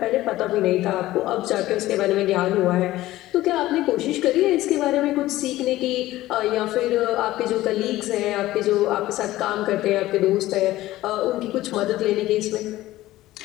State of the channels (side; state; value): right; quieter; 16.1 dB